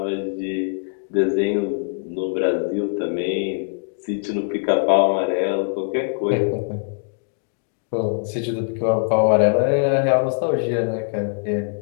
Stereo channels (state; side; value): silent; right; digital silence